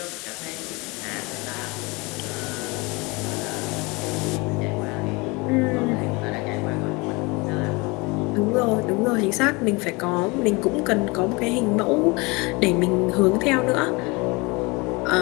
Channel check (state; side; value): quieter; right; 26.5 dB